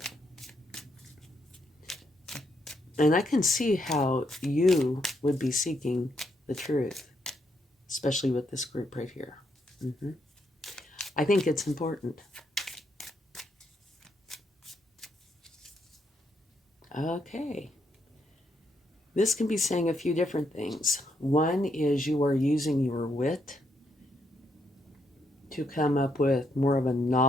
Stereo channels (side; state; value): both; normal; correlation 0.77